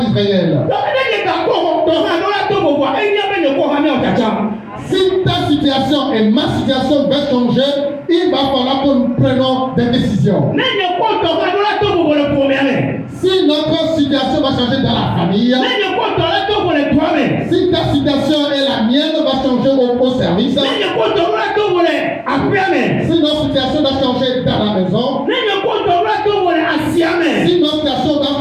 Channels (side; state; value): both; identical; correlation 1.00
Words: Si ta situation et ma situation va changer, il va falloir que nous prenions des décisions. Si notre situation va changer dans la famille, si ta situation et la mienne va changer au service, si notre situation va changer dans la maison, si notre situation va